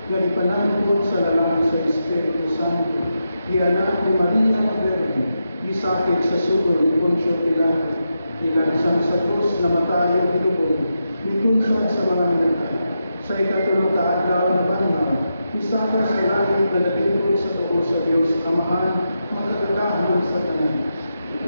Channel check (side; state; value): both; inverted; correlation -0.86